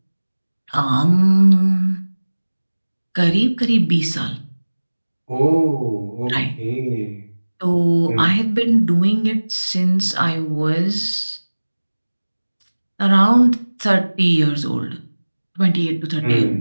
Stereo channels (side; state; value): both; inverted; correlation -1.00